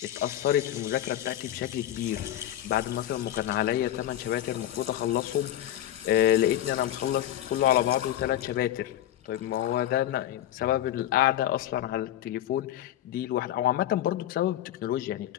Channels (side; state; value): right; quieter; 12.4 dB